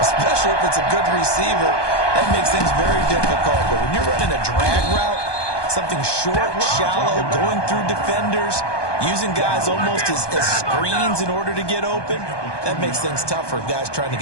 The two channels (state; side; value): late; right; 1.2 ms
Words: if it's a good receiver. That makes things very difficult. But when you're running a drag route, something short, shallow, going through defenders, using guys almost as screens in order to get open, that makes things tough for guys trying to